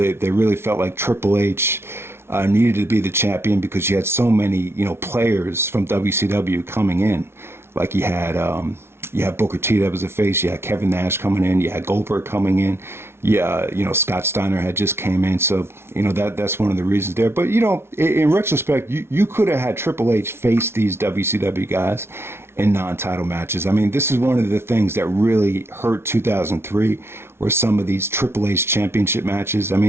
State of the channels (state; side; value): late; left; 0.12 ms